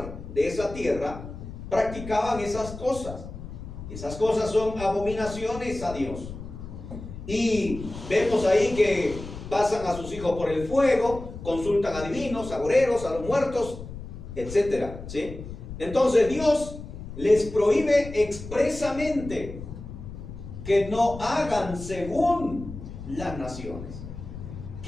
de esa tierra practicaban esas cosas. Esas cosas son abominaciones a Dios. Y vemos ahí que pasan a sus hijos por el fuego, consultan a divinos, agoreros, a los muertos, etcétera, ¿sí? Entonces Dios les prohíbe expresamente que no hagan según las naciones,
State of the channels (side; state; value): left; noise; rumble, 11 dB below the sound